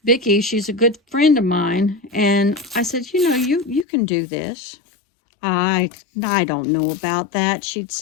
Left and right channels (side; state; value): right; drops out; at 3.9 s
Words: Vicky, she's a good friend of mine, and I said, you know, you can do this. I don't know about that, she'd